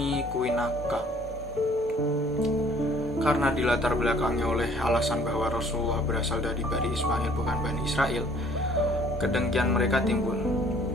Kuinaka. Karena dilatar belakangi oleh alasan bahwa Rasulullah berasal dari Bani Ismail bukan Bani Israel, kedengkian mereka timbul.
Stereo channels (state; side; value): normal; both; correlation 0.56